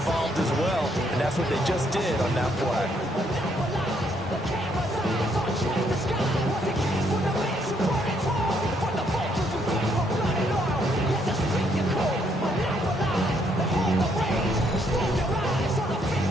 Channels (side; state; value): both; normal; correlation 0.71